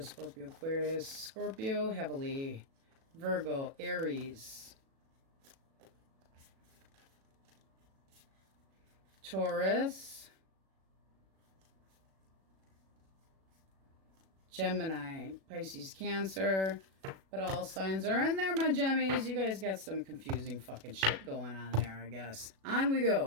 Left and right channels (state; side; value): late; left; 37 ms